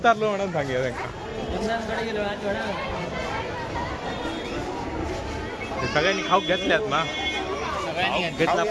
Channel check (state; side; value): identical; both; correlation 1.00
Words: म्हणून सांगितलं त्यांना. सगळ्यांनी खाऊ घेतल्यात ना. घेतला